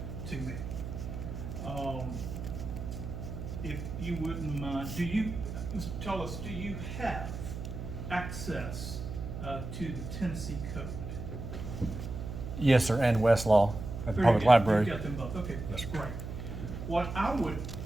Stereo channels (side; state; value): right; noise; hum, 7 dB below the sound